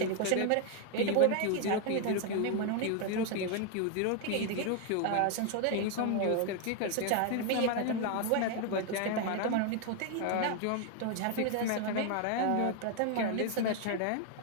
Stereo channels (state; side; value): different; both; correlation 0.01